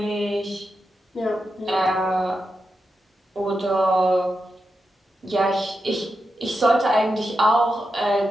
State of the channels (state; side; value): normal; both; correlation 0.88